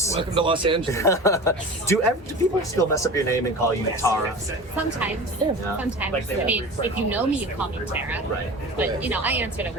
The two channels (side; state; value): both; normal; correlation 0.35